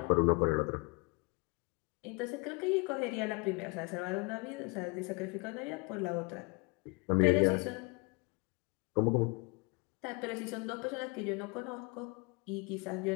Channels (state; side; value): quieter; right; 29.6 dB